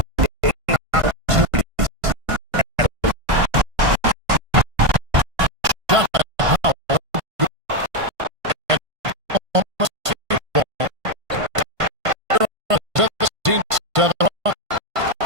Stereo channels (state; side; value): late; left; 1.5 ms